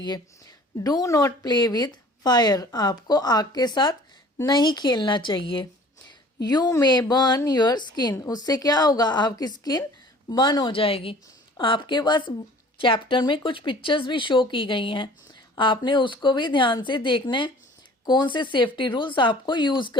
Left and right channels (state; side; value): normal; both; correlation 0.49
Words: Do not play with fire. आपको आग के साथ नहीं खेलना चाहिए. You may burn your skin. उससे क्या होगा, आपकी स्किन बर्न हो जाएगी. आपके पास चैप्टर में कुछ पिक्चर्स भी शो की गई हैं, आपने उसको भी ध्यान से देखना है कौन से सेफ्टी रूल्स आपको यूज